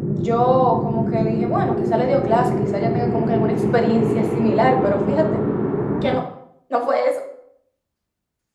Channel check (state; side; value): identical; both; correlation 1.00